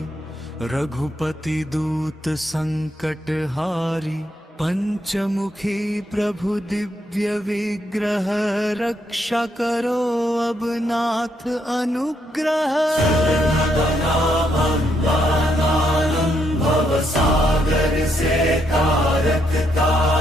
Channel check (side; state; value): both; normal; correlation 0.76